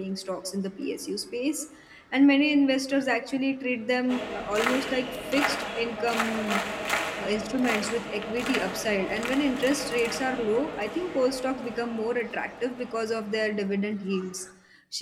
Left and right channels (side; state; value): both; identical; correlation 1.00